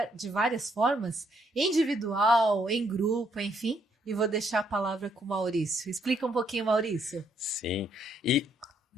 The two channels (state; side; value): normal; both; correlation 0.71